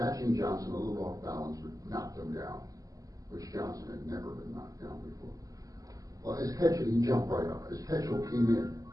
Johnson a little off balance, but knocked him down, which Johnson had never been knocked down before. Well, as Ketchel, he jumped right up. As Ketchel came in,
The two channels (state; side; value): late; left; 0.17 ms